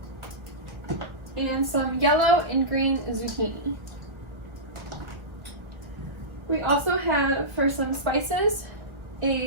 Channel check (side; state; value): left; late; 1.2 ms